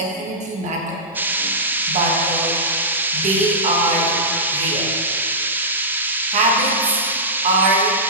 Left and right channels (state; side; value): normal; both; correlation -0.16